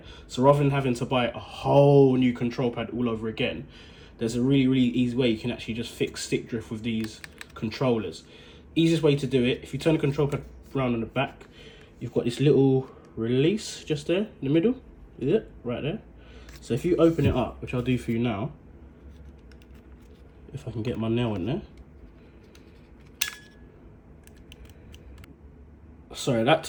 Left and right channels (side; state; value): both; identical; correlation 1.00